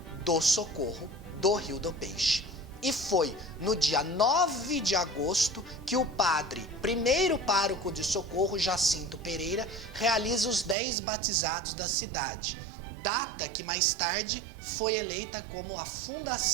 do Socorro do Rio do Peixe. E foi no dia 9 de agosto que o padre, primeiro pároco de Socorro, Jacinto Pereira, realiza os 10 batizados da cidade, data que mais tarde foi eleita como a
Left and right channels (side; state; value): left; drops out; at 10.8 s